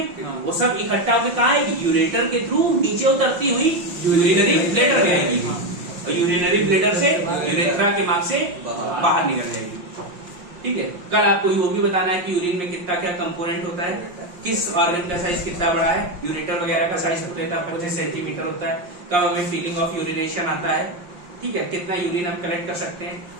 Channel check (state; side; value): late; left; 5.7 ms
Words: हाँ। वो सब इकट्ठा होकर कहाँ आएगी? यूरेटर के थ्रू नीचे उतरती हुई यूरिनरी ब्लैडर में आएगी, हाँ। और यूरिनरी ब्लैडर से यूरेथ्रा के मार्ग से बाहर निकल जाएगी। ठीक है, कल आपको वो भी बताना है कि यूरिन में कितना क्या कंपोनेंट होता है, किस ऑर्गन का साइज कितना बड़ा है। यूरेटर वगैरह का साइज होता है 25 सेंटीमीटर होता है। कब हमें फीलिंग ऑफ यूरिनेशन आता है, ठीक है, कितना यूरिन हम कलेक्ट कर सकते हैं,